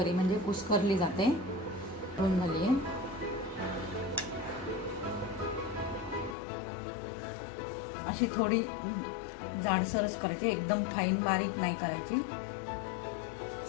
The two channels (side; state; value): right; drops out; at 6.4 s